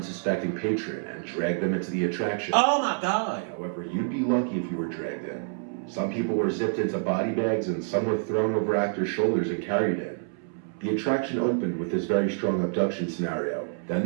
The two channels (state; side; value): silent; left; 60 dB below the other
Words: patron and dragged them into the attraction. Oh my God. However, you'd be lucky if you were dragged in. Some people were zipped into body bags and some were thrown over actors' shoulders and carried in. The attraction opened with this very strong abduction scenario. Then